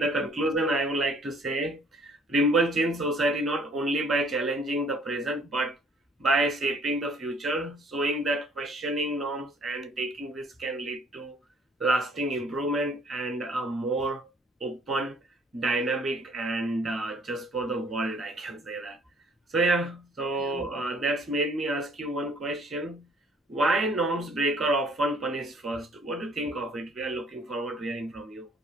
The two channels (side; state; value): both; normal; correlation 0.58